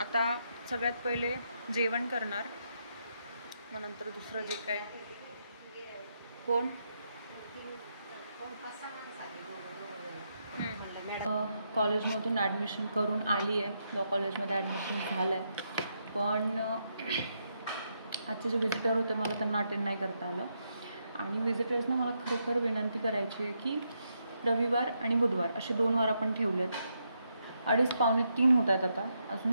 सगळ्यात पहिले जेवण करणार, मग नंतर दुसरं जे काय. कोण? कॉलेजमधून ॲडमिशन करून आली आहे. लॉ कॉलेजमध्ये ॲडमिशन झालं आहे, पण आजचे जे व्हिजिटर होते मला त्यांना अटेंड नाही करता आलं. आणि व्हिजिटर्सना मला खरोखर विनंती करायची आहे की रविवार आणि बुधवार असे 2 वार आपण ठेवलेत. 2:30 पावणे 3 होत आहेत आता,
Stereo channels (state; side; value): inverted; both; correlation -0.80